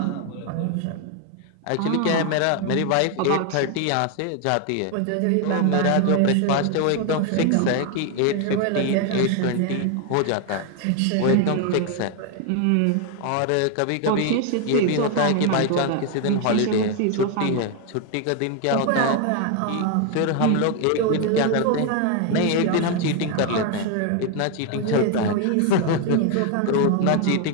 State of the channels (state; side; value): different; both; correlation 0.01